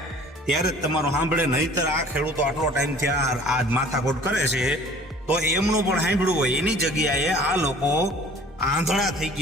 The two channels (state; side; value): normal; both; correlation 0.49